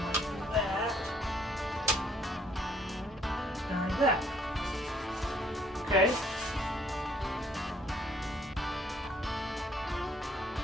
that. And that. Okay.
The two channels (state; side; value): normal; both; correlation 0.63